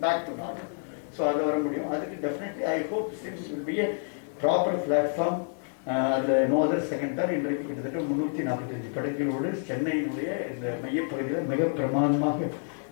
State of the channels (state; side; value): silent; right; digital silence